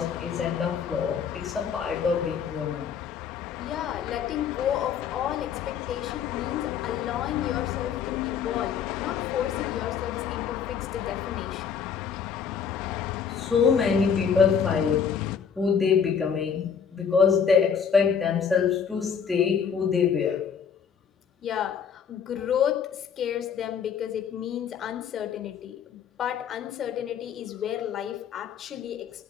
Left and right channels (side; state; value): right; quieter; 7.1 dB